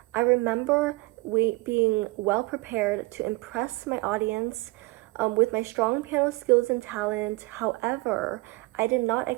I remember being well prepared to impress my audience with my strong piano skills and talent. However, I did not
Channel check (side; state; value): left; quieter; 22.9 dB